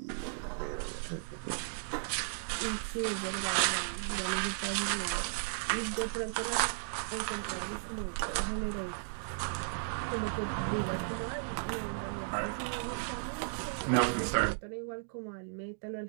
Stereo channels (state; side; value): silent; left; digital silence